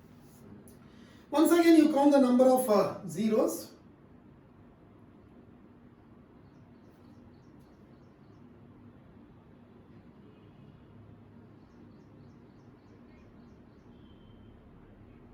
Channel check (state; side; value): identical; both; correlation 1.00